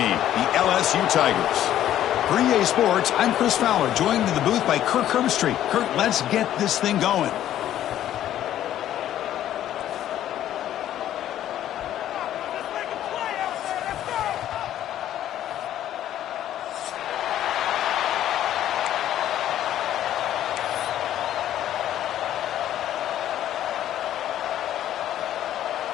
the LSU Tigers. For EA Sports, I'm Chris Fowler, joined in the booth by Kirk Herbstreit. Kirk, let's get this thing going.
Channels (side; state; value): right; quieter; 11.9 dB